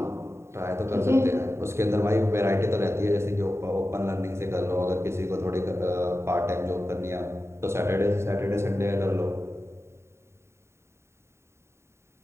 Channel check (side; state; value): left; late; 0.13 ms